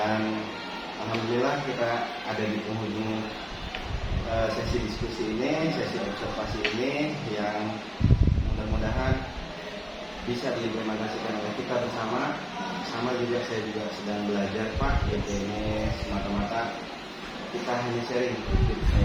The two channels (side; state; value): both; identical; correlation 1.00